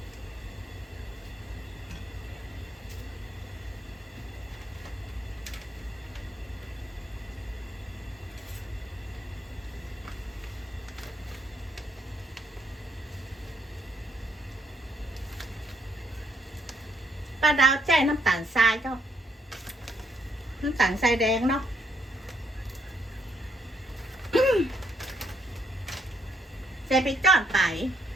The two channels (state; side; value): normal; both; correlation 0.73